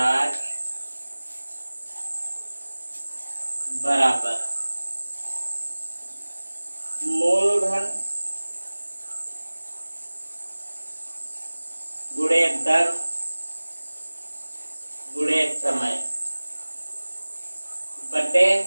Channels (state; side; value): inverted; both; correlation -1.00